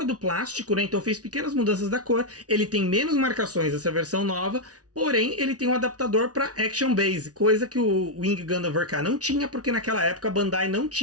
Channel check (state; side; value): late; left; 0.68 ms